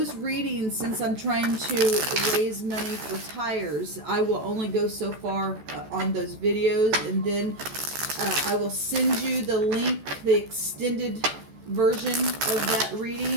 readings, since I'm trying to raise money for tires, I will only go so far on those videos. And then I will send you the link, the extended version of that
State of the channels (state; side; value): late; left; 14 ms